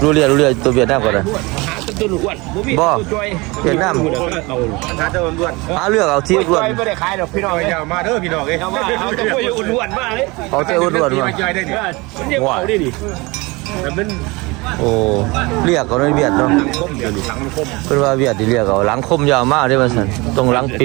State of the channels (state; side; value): quieter; left; 24.4 dB